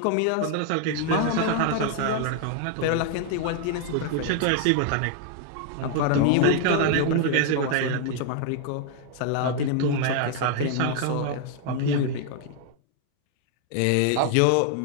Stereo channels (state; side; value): different; both; correlation 0.00